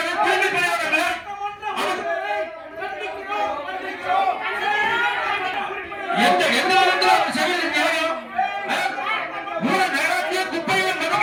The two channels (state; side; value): identical; both; correlation 1.00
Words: தூய்மை பணியாளர்களை? எந்த விதத்துல அவர் செய்யறது நியாயம்? நகராட்சியை குப்பையை